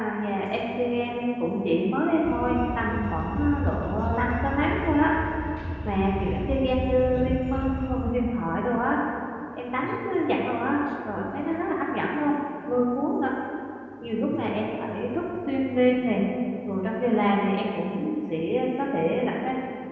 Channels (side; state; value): both; identical; correlation 1.00